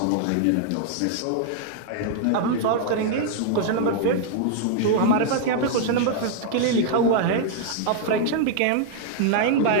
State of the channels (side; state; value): both; different; correlation -0.01